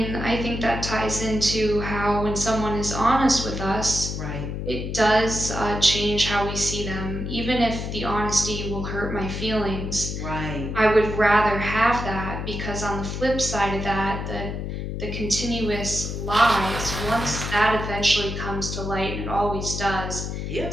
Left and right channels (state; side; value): noise; left; hum, 4 dB below the sound